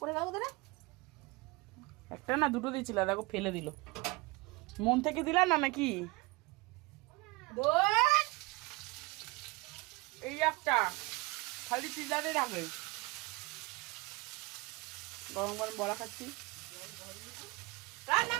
যাবো তো। একটা না দুটো দিয়েছিল, দেখো ফেলে দিল। মন থেকে দিলাম না নাকি? এই একটা খালি পিজারে রাখবে। গরম গরম বড়া খাচ্ছি। রান্না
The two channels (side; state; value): left; quieter; 24.2 dB